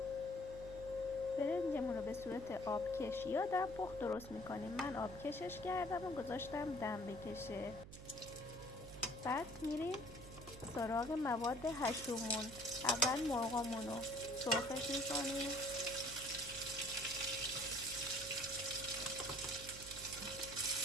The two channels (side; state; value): right; noise; hum, 13 dB below the sound